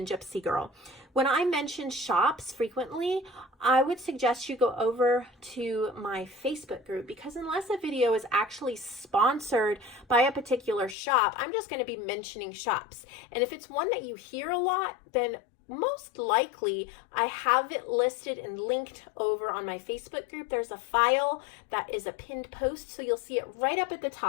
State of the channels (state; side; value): drops out; right; at 11.0 s